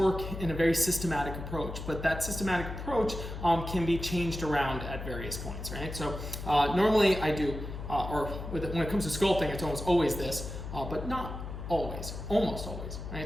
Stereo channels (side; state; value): left; noise; hum, 8 dB below the sound